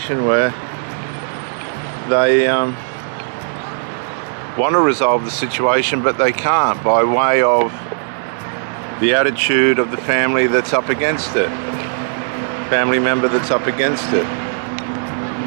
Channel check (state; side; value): silent; left; digital silence